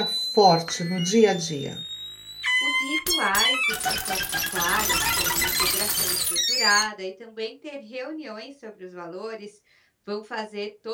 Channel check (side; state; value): both; identical; correlation 1.00